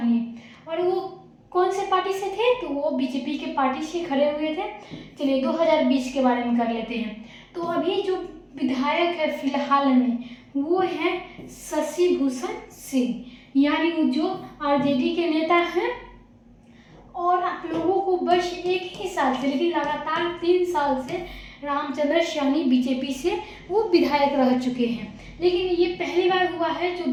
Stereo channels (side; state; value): both; identical; correlation 1.00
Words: और वो कौन से पार्टी से थे, तो वो बीजेपी के पार्टी से खड़े हुए थे। चलिए, 2020 के बारे में कर लेते हैं। तो अभी जो विधायक है फिलहाल में वो है शशि भूषण सिंह, यानी वो जो आरजेडी के नेता हैं। और आप लोगों को बस एक ही साल से, लेकिन लगातार 3 साल से रामचंद्र सैनी बीजेपी से वो विधायक रह चुके हैं, लेकिन ये पहली बार हुआ है जो